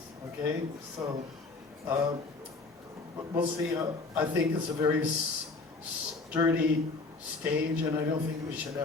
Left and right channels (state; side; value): quieter; right; 3.7 dB